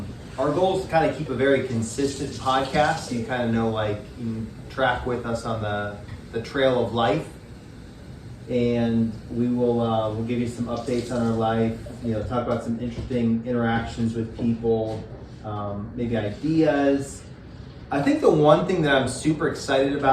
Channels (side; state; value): both; identical; correlation 1.00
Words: goal is to kind of keep a very consistent podcast, so you kind of know, like, you can track with us on the trail of life, and we'll give you some updates on our life. Talk about some interesting interactions with people, maybe ideas. I think the one thing that I'm super excited